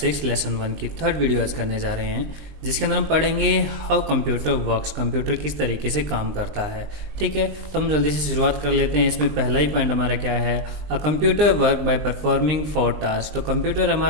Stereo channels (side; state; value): left; late; 20 ms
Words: लेसन 1 की थर्ड वीडियो आज करने जा रहे हैं, जिसके अंदर हम पढ़ेंगे हाउ कंप्यूटर वर्क्स, कंप्यूटर किस तरीके से काम करता है। ठीक है, तो हम जल्दी से शुरुआत कर लेते हैं। इसमें पहला ही पॉइंट हमारा क्या है, a computer work by performing 4 task. तो कंप्यूटर